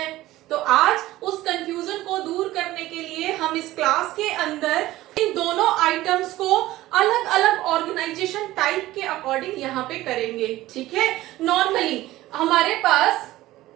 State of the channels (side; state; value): left; quieter; 16.4 dB